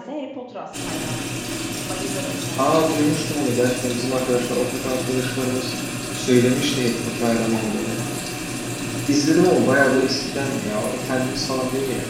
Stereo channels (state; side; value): identical; both; correlation 1.00